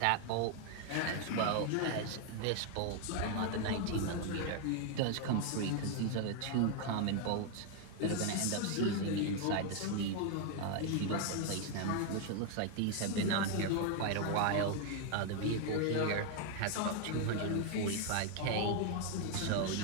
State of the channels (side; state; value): both; different; correlation 0.01